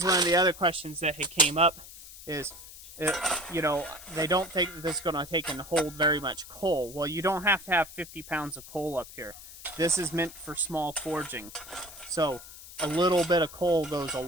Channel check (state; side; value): noise; left; hiss, 16 dB below the sound